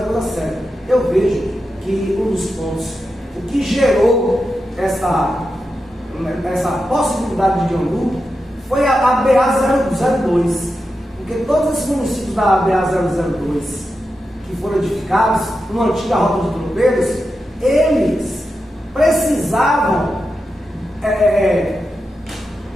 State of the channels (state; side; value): normal; both; correlation 0.89